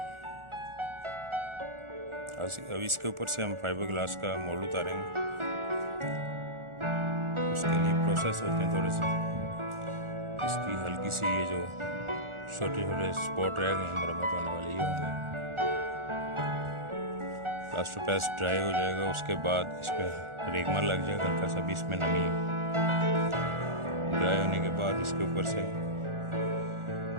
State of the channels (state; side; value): late; left; 1.4 ms